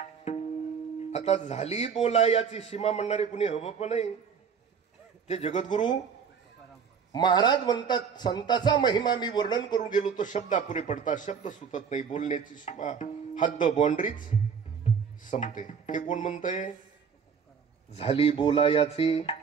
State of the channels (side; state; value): left; quieter; 6.6 dB